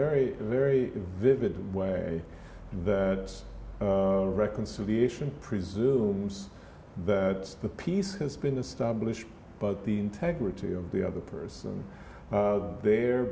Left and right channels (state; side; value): identical; both; correlation 1.00